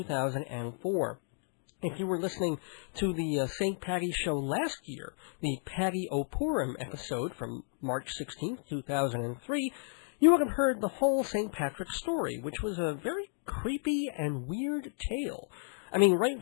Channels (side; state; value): right; silent; 56 dB below the other